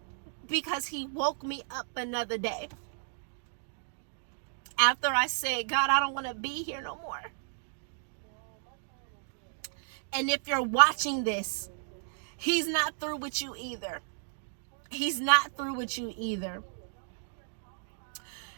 because he woke me up another day. After I said, God, I don't want to be here no more. And if you're watching this, he's not through with you either. He's not through with you either.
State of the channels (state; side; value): silent; left; digital silence